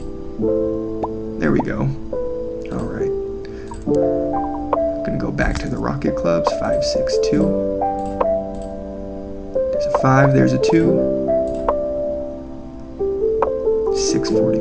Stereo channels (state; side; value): identical; both; correlation 1.00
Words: There we go. All right. Gonna go back to the rocket clubs. 5, 6, 2. There's a 5. There's a 2.